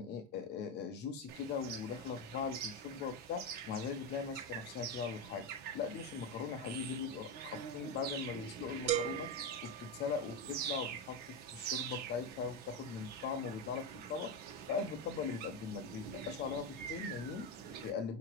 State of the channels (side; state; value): both; normal; correlation 0.13